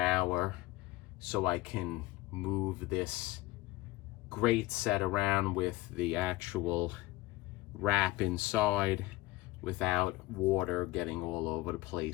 so I can move this grate set around with the actual wrap inside without water getting all over the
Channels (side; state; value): right; quieter; 18.8 dB